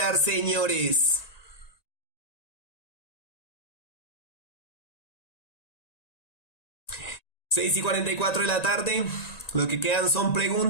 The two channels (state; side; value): late; right; 1.9 ms